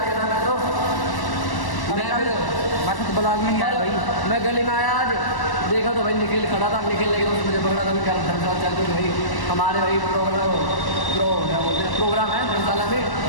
था मैं तो ब्लॉग में नहीं आया भाई। मैं गली में आया आज, देखा तो भाई निखिल खड़ा था। निखिल लेकिन उसने मुझे पकड़ा था मैं क्या धर्मशाला चल रही भाई हमारे भाई प्रोग्राम है धर्मशाला में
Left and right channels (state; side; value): late; right; 1.1 ms